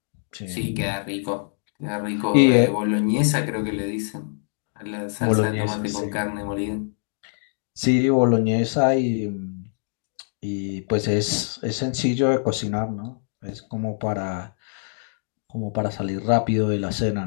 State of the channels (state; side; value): silent; right; digital silence